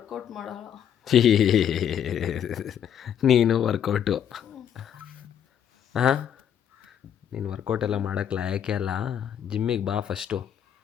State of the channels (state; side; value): quieter; right; 9.2 dB